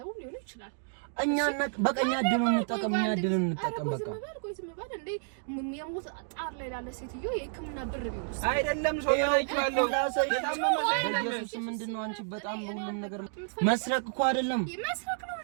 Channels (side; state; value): left; silent; digital silence